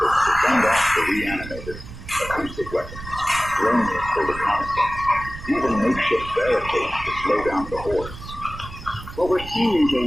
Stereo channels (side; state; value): right; noise; rumble, 13 dB below the sound